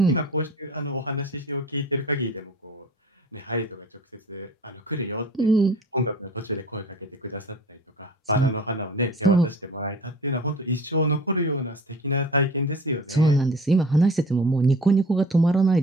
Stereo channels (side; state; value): both; normal; correlation 0.43